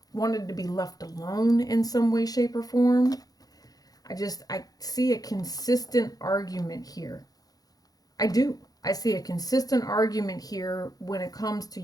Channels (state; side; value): late; right; 0.18 ms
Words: wanted to be left alone in some way, shape, or form. I see a consistent argument here. I do. I see a consistent argument here when it comes to